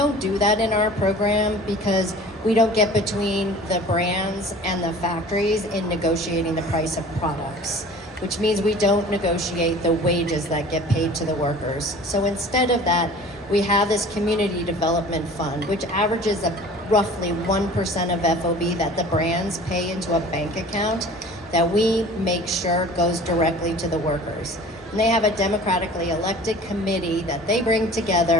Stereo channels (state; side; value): normal; both; correlation 0.44